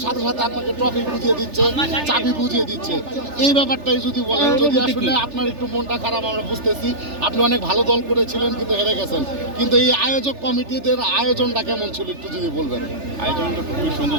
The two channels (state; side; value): late; left; 3.4 ms